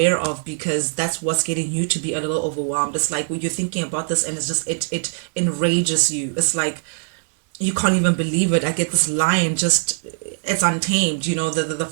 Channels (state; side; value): silent; left; digital silence